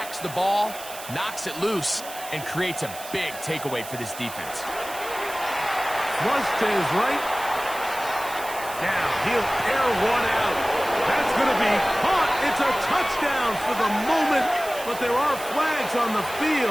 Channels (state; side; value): noise; right; hiss, 13 dB below the sound